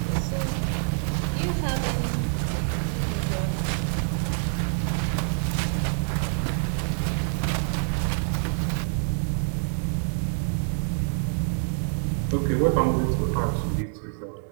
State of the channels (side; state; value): left; silent; 61 dB below the other